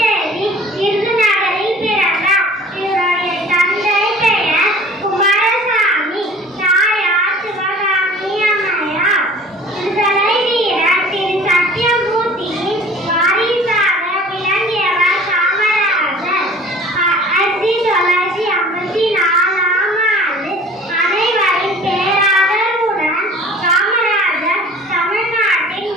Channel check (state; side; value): normal; both; correlation 0.46